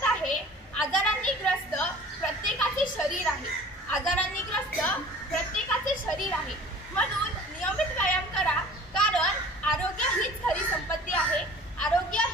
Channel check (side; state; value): both; normal; correlation 0.46